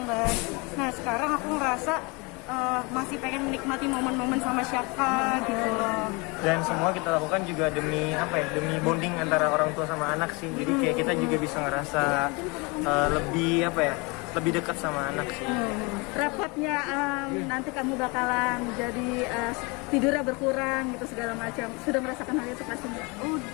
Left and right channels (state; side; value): quieter; right; 28.3 dB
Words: kan. Nah sekarang aku ngerasa masih pengen menikmati momen-momen sama Syaka gitu loh. Dan semua kita lakukan juga demi apa ya, demi bonding antara orang tua sama anak sih. Jadi kayak kita juga bisa ngerasa lebih apa ya, lebih dekat sama anak sih. Rapatnya nanti kamu bakalan jadi tidurnya berkurang gitu segala macam. Sudah merasakan hal itu pastinya?